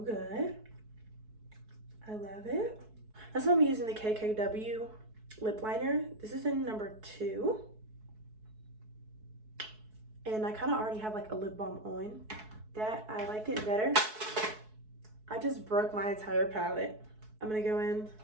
I love it. That's why I'm using the KKW lip liner. This is in number 2. And I kind of already have like a lip balm on that. I like it better. I just broke my entire palette. I'm gonna go in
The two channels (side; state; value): left; late; 4.6 ms